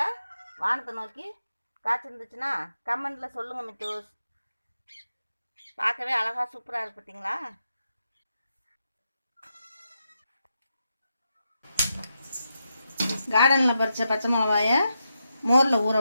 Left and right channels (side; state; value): both; inverted; correlation -0.85